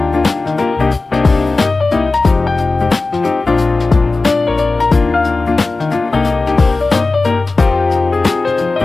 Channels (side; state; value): right; quieter; 3.4 dB